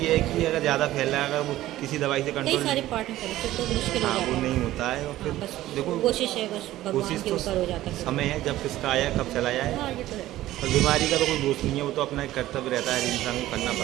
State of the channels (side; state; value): left; quieter; 15.0 dB